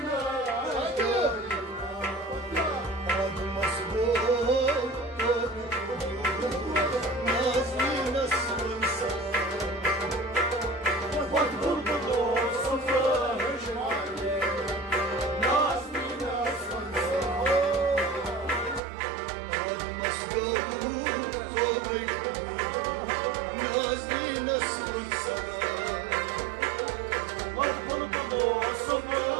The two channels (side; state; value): left; drops out; at 18.8 s